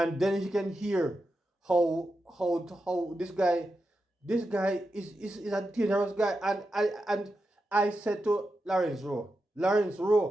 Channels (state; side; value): normal; both; correlation 0.88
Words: then you can hear how this guy is a dangerous guy. And I said to Lawrence Rowe,